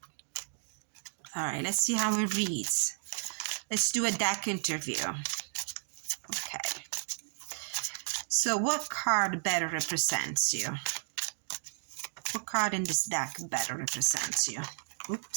All right, let's see how it reads. Let's do a deck interview. Okay. So what card better represents you? What card in this deck better represents you?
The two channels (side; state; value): left; silent; digital silence